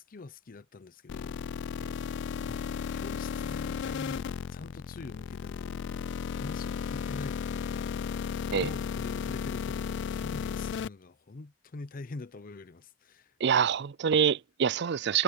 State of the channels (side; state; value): both; normal; correlation 0.07